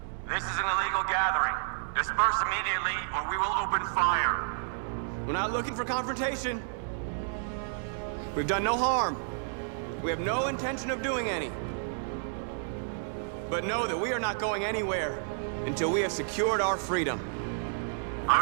This is an illegal gathering. Disperse immediately or we will open fire. We're not looking for confrontation. We've done no harm. We have no intention of doing any. But know that we are not going anywhere until we have secured our freedom.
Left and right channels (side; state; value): left; silent; digital silence